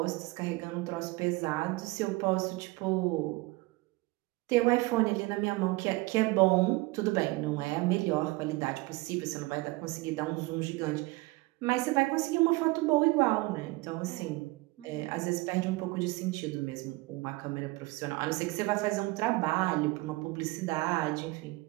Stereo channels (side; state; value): left; quieter; 22.6 dB